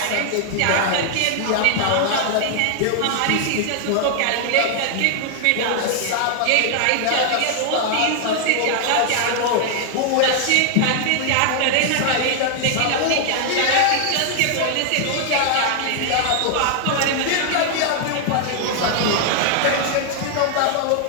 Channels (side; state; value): both; different; correlation 0.00